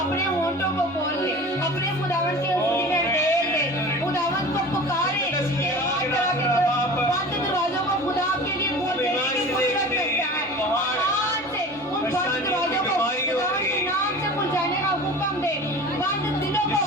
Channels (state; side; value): normal; both; correlation 0.38